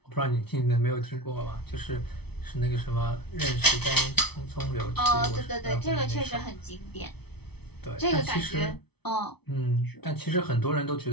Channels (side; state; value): right; late; 0.98 ms